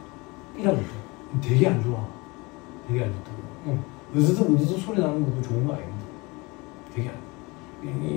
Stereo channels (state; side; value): quieter; right; 25.5 dB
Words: 되게 안 좋아. 되게 안 좋다고. 으드득 소리 나는 것도 좋은 거 아닙니다. 되게 안